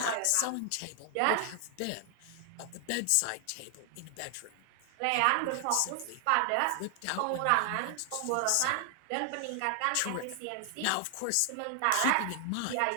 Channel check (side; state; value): both; different; correlation 0.00